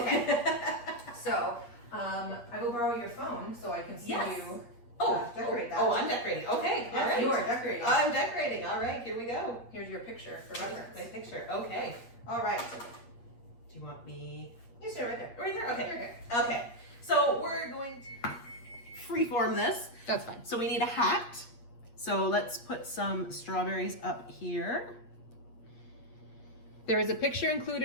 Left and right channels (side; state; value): right; late; 8.4 ms